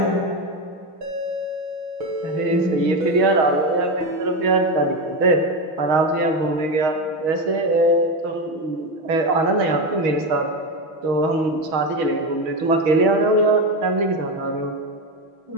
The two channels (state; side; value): late; left; 6.3 ms